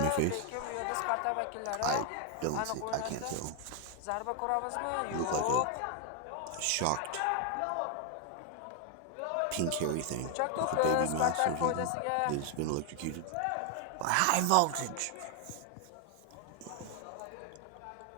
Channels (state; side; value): different; both; correlation 0.00